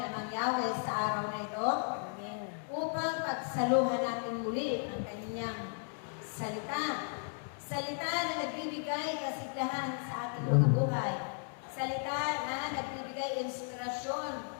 Amang Yahweh sa araw na ito? Upang pagsaluhan natin muli ang kanyang salita. Salita na nagbibigay kasiglahan sa ating mga buhay. Salita na nagbibigay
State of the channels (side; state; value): right; silent; 54 dB below the other